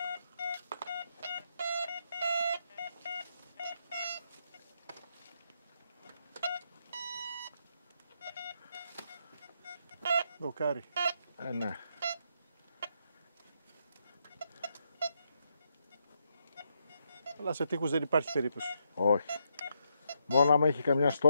Δοκάρι. Ναι. Αλλά σε τείχους δεν υπάρχει περίπτωση. Όχι. Μόνο άμα έχει καμιά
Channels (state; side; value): inverted; both; correlation -0.79